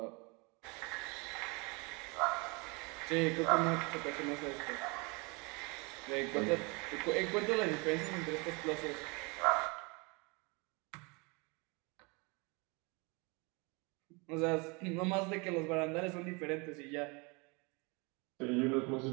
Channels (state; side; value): quieter; left; 29.3 dB